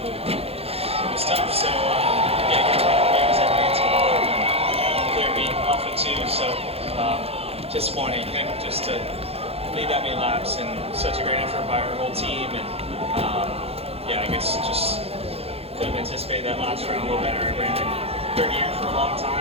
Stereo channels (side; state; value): left; late; 0.29 ms